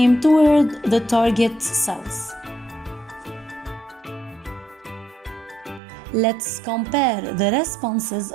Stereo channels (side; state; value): left; drops out; at 5.8 s